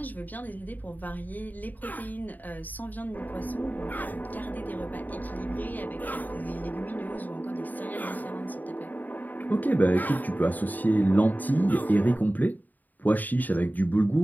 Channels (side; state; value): right; late; 0.084 ms